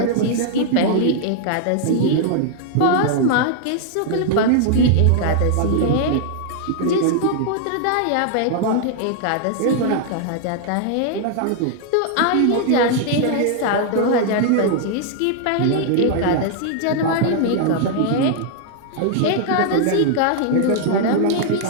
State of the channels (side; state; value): both; different; correlation 0.00